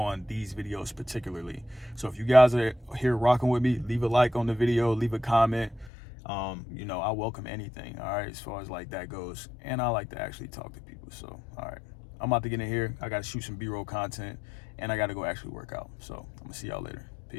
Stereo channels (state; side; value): drops out; right; at 5.9 s